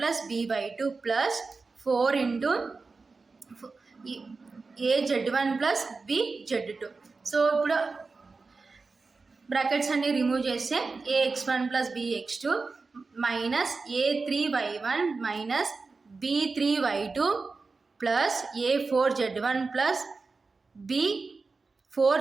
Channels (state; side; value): quieter; left; 4.1 dB